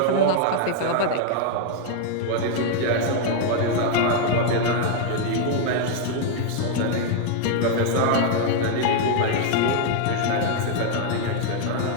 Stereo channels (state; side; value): different; both; correlation 0.00